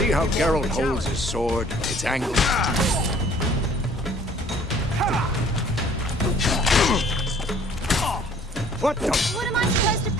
how Geralt holds his sword? It's angled. What the? What am I supposed to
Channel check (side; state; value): both; normal; correlation 0.55